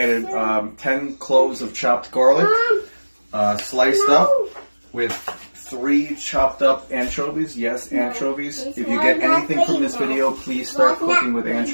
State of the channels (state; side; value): inverted; both; correlation -1.00